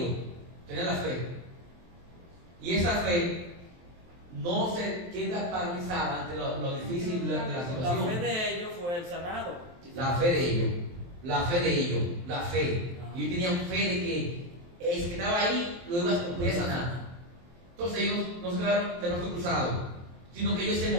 Tenían la fe. Y esa fe no se queda paralizada ante lo difícil de la situación. La fe de ellos fue el sanado. La fe de ellos. Y ellos tenían fe de que el que estaba ahí lo iba a sanar. Entonces ellos no se quedaron de brazos cruzados, sino que ellos se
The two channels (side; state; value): left; late; 23 ms